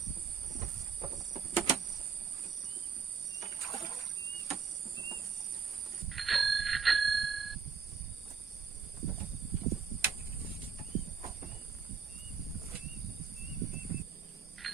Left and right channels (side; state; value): left; quieter; 6.0 dB